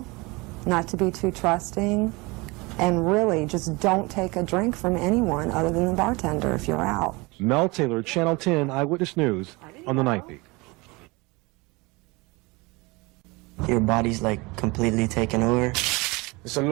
not to be too trusting, and really just don't take a drink from anyone other than the bartender if you're out. Mel Taylor, Channel 10 Eyewitness News on the Night Beat. Your body's like completely taken over. It's a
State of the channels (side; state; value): left; quieter; 25.0 dB